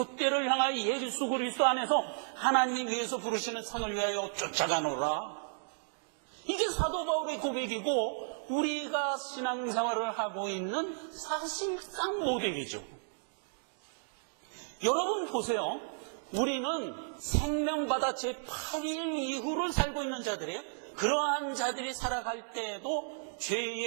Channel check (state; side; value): silent; left; digital silence